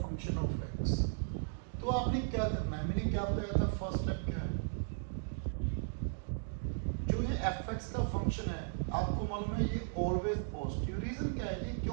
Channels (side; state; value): left; silent; digital silence